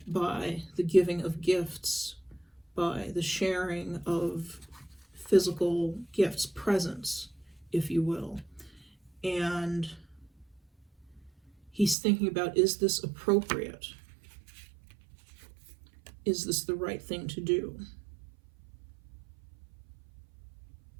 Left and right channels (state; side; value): drops out; left; at 12.0 s